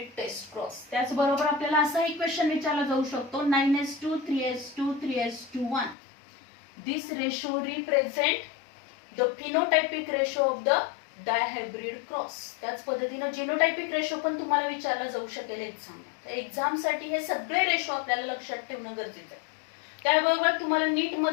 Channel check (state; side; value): drops out; right; at 6.0 s